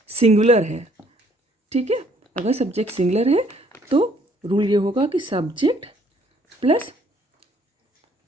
सिंगुलर है, ठीक है, अगर सब्जेक्ट सिंगुलर है तो रूल ये होगा कि सब्जेक्ट प्लस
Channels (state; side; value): normal; both; correlation 0.63